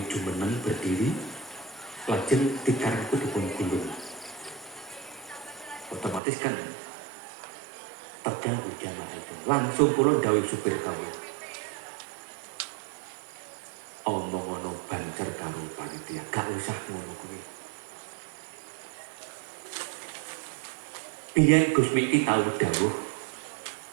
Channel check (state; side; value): drops out; left; at 6.2 s